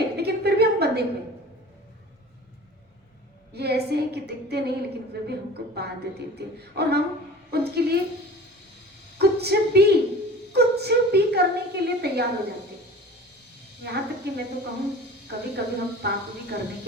लेकिन फिर भी हम बंधे हुए। ये ऐसे है कि दिखते नहीं, लेकिन फिर भी हमको बांध देते हैं, और हम उनके लिए कुछ भी करने के लिए तैयार हो जाते हैं। यहाँ तक कि मैं तो कहूँ, कभी कभी हम पाप भी करने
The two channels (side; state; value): both; normal; correlation 0.40